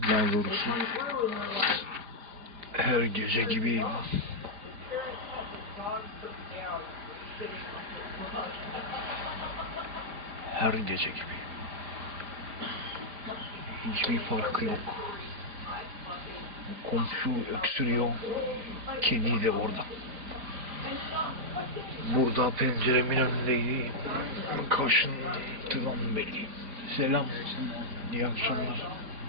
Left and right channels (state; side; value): late; left; 5.0 ms